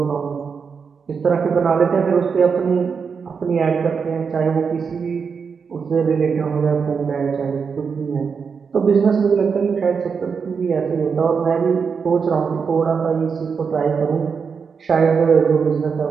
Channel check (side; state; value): left; quieter; 5.9 dB